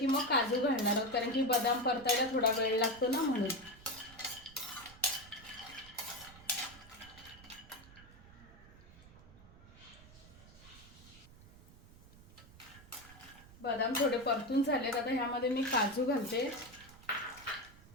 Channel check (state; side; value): noise; right; rumble, 21 dB below the sound